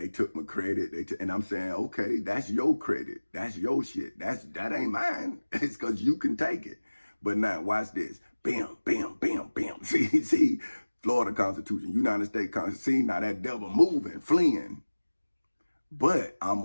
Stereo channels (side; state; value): both; inverted; correlation -1.00